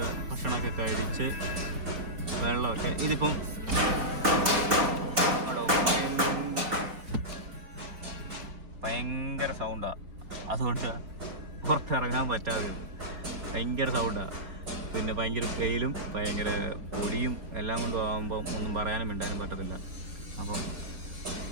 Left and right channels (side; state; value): left; late; 4.2 ms